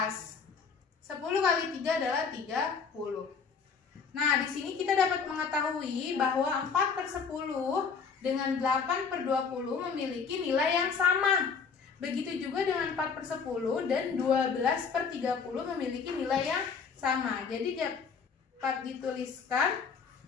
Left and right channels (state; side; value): quieter; right; 5.7 dB